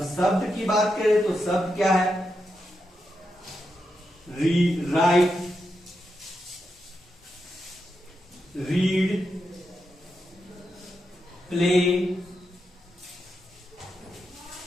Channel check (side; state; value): both; normal; correlation 0.86